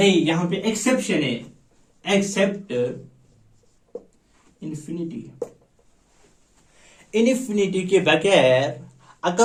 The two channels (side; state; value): both; identical; correlation 1.00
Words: यहां पे एक्सेप्शन है, एक्सेप्ट इन्फिनिटी, इन्फिनिटी के बगैर अगर